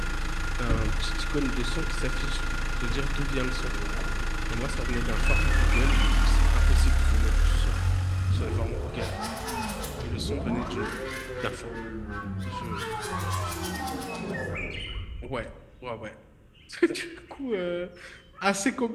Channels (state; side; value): identical; both; correlation 1.00